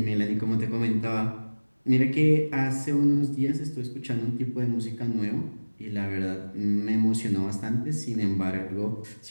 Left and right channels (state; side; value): inverted; both; correlation -1.00